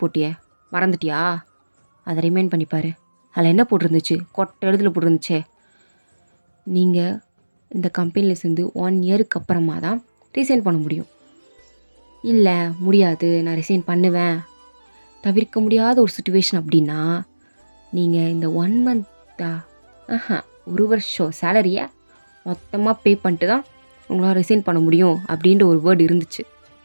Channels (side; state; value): both; inverted; correlation -1.00